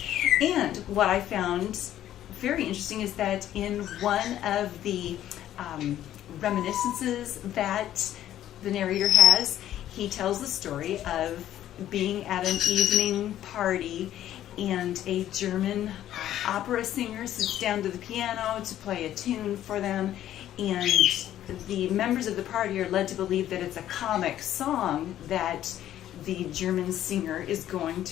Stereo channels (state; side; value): quieter; right; 12.1 dB